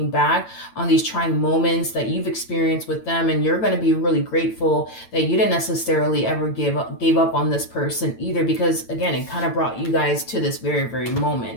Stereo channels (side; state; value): right; late; 8.9 ms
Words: back on these trying moments that you've experienced with them, and you're going to be really grateful that you didn't necessarily ever gave up on this person either, because again, it kind of brought you guys to this very, very